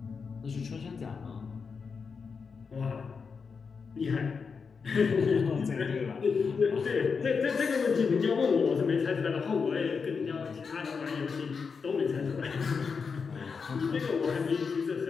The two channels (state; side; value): quieter; right; 5.4 dB